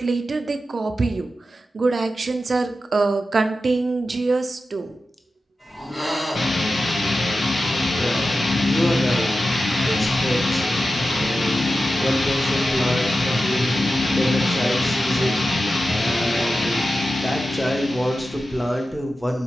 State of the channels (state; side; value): normal; both; correlation 0.92